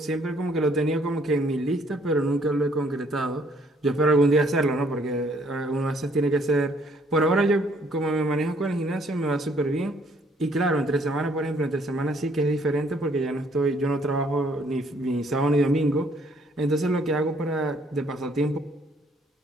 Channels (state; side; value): normal; both; correlation 0.64